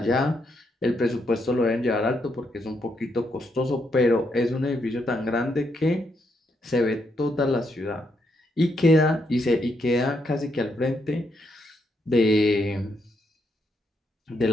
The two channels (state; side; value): normal; both; correlation 0.78